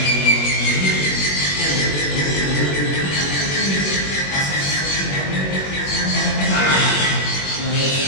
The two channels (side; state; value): right; late; 21 ms